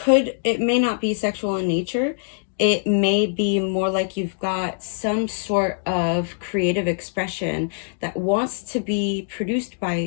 it may not be sexual in nature. It may be more like you've got some sort of creative expression that wants to be produced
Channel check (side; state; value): right; silent; digital silence